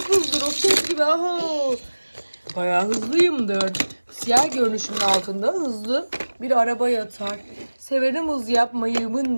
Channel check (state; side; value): inverted; both; correlation -1.00